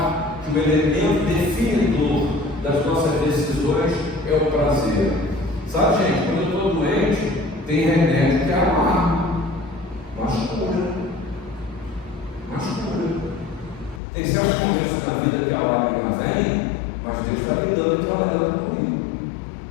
que o elemento definidor das nossas decisões é o prazer. Sabe, gente, quando eu estou doente, tem remédio que é amargo, mas cura. Tem certos momentos na vida que a lágrima vem, mas Deus está me dando e trabalhando comigo,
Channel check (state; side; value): drops out; right; at 14.0 s